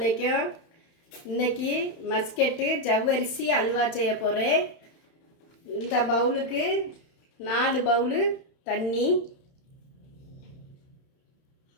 இன்னைக்கு மஸ்கெட்டு ஜவ்வரிசி அல்வா செய்ய போகிறேன். இந்த பவுலுக்கு 4 பவுலு தண்ணி,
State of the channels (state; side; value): late; right; 31 ms